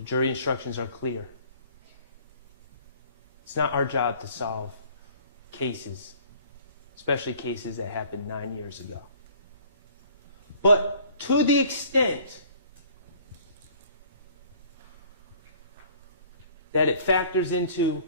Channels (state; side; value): inverted; both; correlation -0.53